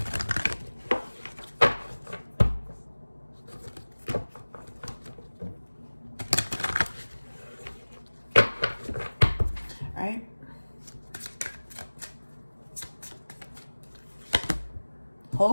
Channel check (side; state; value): both; inverted; correlation -1.00